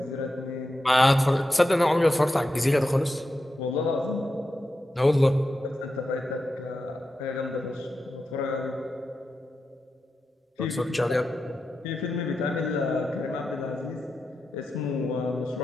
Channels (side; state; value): both; normal; correlation 0.89